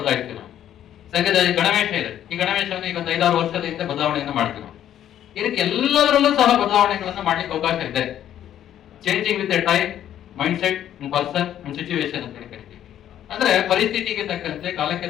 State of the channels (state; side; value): quieter; right; 11.0 dB